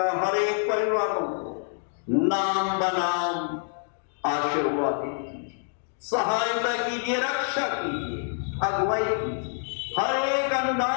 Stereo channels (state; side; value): silent; right; 60 dB below the other